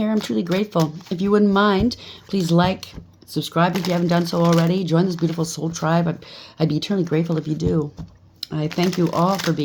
I'm truly grateful. If you wouldn't mind, please like, subscribe if you haven't done so already. Join this beautiful soul tribe. I'd be eternally grateful if you do. I thank you all for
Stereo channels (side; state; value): both; identical; correlation 1.00